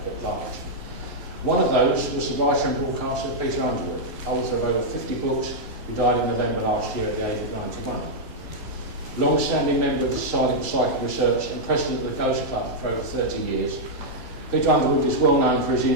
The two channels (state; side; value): normal; both; correlation -0.05